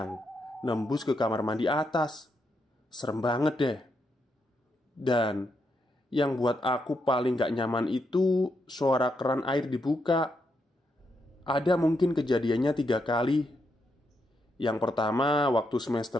nembus ke kamar mandi atas. Serem banget deh. Dan yang buat aku paling gak nyaman itu suara keran air dibuka. Ada mungkin kejadiannya 3 kali. Yang pertama waktu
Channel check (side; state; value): both; normal; correlation 0.81